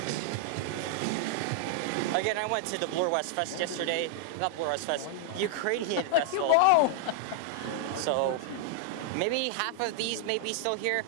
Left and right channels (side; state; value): both; different; correlation -0.01